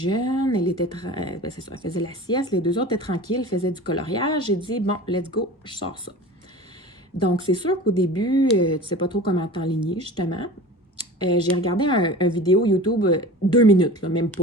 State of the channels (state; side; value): normal; both; correlation 0.36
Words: Elle était, ben c'est ça, elle faisait la sieste. Les deux autres étaient tranquilles, faisaient du coloriage. J'ai dit, bon, let's go, je sors ça. Donc, c'est sûr qu'au début, tu ne sais pas trop comment t'enligner, justement. J'ai regardé un vidéo YouTube 2 minutes, là, même